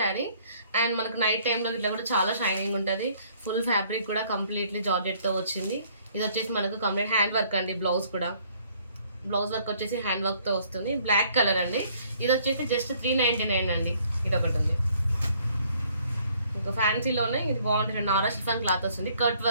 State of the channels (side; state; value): both; inverted; correlation -0.61